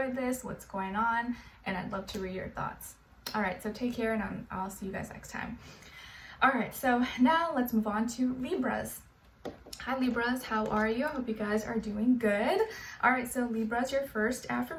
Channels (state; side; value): identical; both; correlation 1.00